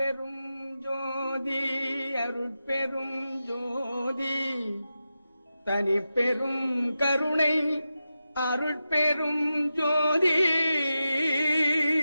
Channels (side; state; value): both; inverted; correlation -0.91